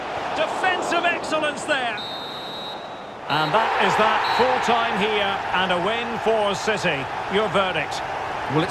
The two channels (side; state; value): both; identical; correlation 1.00